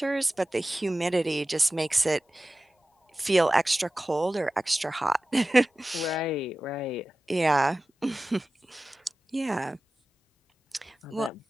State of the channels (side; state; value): both; normal; correlation 0.96